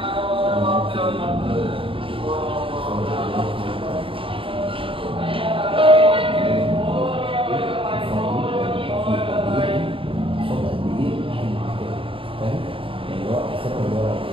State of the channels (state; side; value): late; left; 0.26 ms